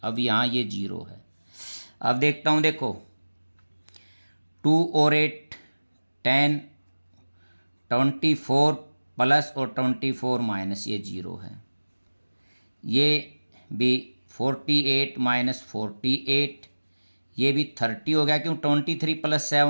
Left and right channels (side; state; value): both; inverted; correlation -1.00